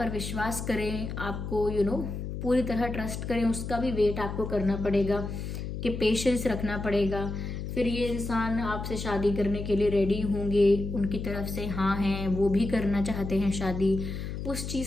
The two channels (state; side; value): noise; left; hum, 6 dB below the sound